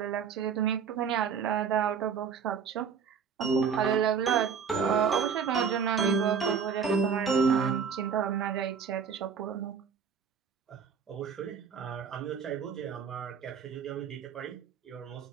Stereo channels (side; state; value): left; quieter; 6.5 dB